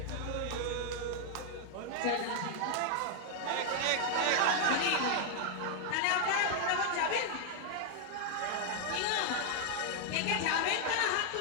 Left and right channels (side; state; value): both; different; correlation 0.00